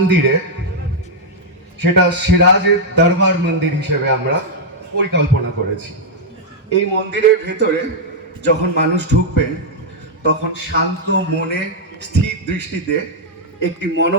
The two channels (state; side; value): normal; both; correlation -0.04